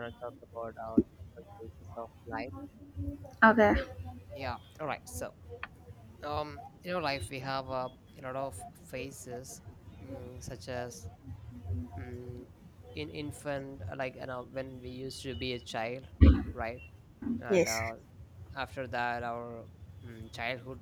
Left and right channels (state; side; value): identical; both; correlation 1.00